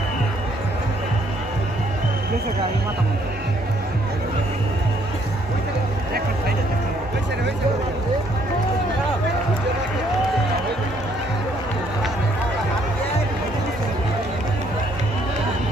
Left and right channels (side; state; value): both; normal; correlation 0.66